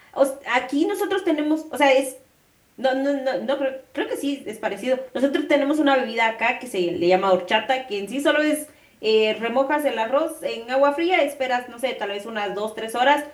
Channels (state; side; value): identical; both; correlation 1.00